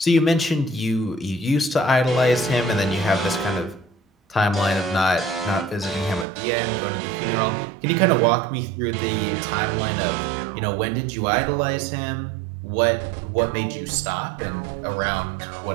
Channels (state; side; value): drops out; left; at 6.2 s